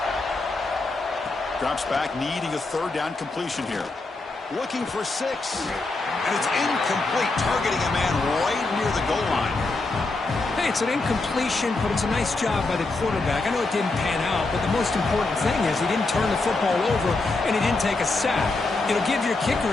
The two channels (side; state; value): right; quieter; 3.4 dB